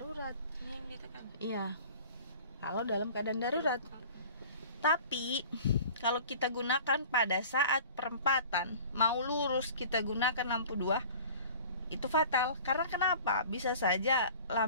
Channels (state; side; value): inverted; both; correlation -0.44